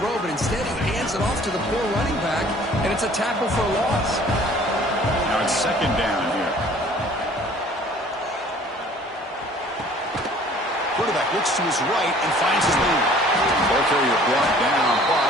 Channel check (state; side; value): normal; both; correlation 0.53